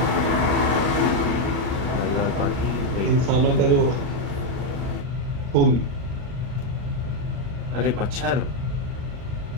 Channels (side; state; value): left; late; 40 ms